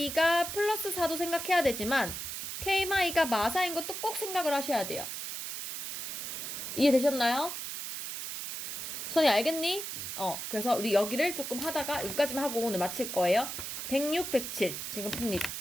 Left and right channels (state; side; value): noise; right; hiss, 6 dB below the sound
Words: 플러스 4도 생각해야 되지만 k-가 마사인 것도 꼭 생각을 하셔야 돼요. 이해되셨나요? 수원이 알겠니? 그래서 우리 여기를 조금 하다가 여기까지만 하고 오늘 마칠 거예요. 106, 107 지금 풉니다.